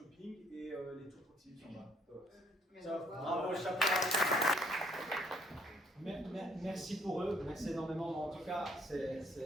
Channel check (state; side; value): normal; both; correlation 0.65